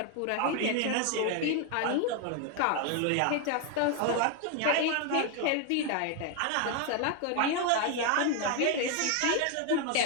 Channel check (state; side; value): different; both; correlation 0.01